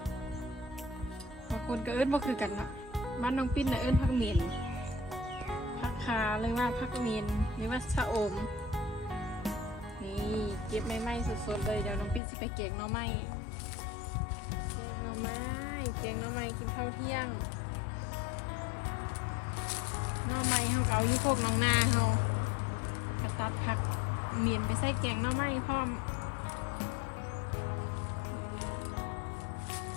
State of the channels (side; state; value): right; drops out; at 12.2 s